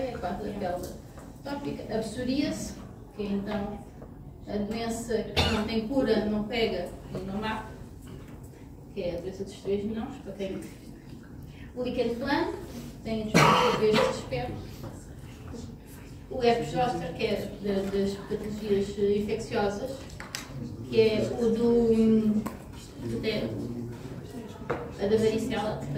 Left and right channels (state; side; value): identical; both; correlation 1.00